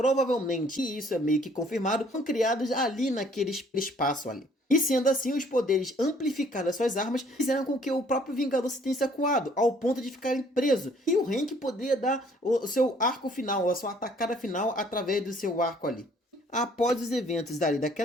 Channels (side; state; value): both; normal; correlation 0.60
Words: e isso é meio que confirmado, foram criadas ali naquele espaço ali. E sendo assim, os poderes amplificados das suas armas fizeram com que o próprio Vingador se tenha acuado, ao ponto de ficarem preso. E o Hank poderia dar o seu arco final, a sua atacada final através do seu arco ali. Após os eventos